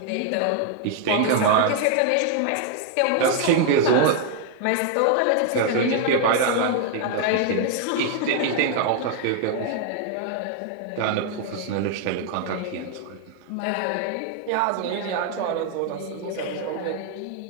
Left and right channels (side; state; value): both; different; correlation 0.00